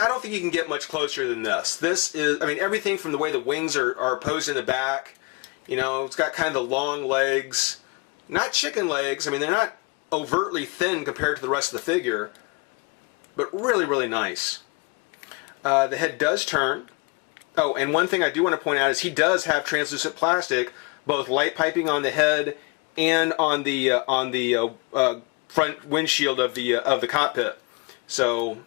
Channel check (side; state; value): right; quieter; 30.1 dB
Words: think you can get much closer than this. This is, I mean, everything from the way the wings are posed in the back. You know, it's got kind of the long legs, not chicken legs. I mean, they're not overtly thin compared to the rest of the figure, but really, really nice. The head does turn. Oh, and one thing I do want to point out is he does have translucent plastic, both light piping on the head and on the front windshield of the cockpit. So